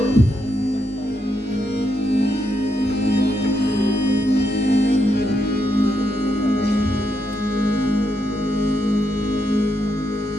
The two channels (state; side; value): normal; both; correlation 0.81